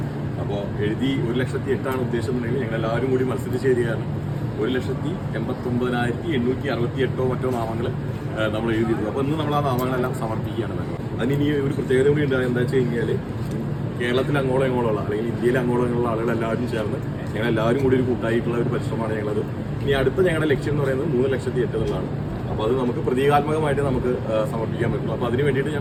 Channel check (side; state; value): both; identical; correlation 1.00